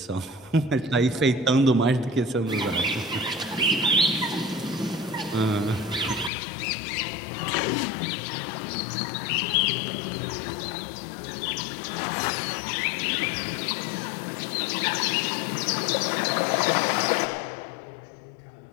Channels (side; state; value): right; drops out; at 6.3 s